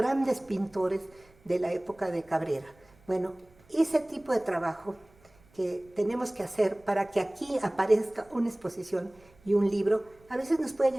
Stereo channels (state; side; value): noise; right; rumble, 29 dB below the sound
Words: pintores de la época de Cabrera. Bueno, ese tipo de trabajo que tenemos que hacer para que aquí aparezca una exposición y un libro, a veces nos puede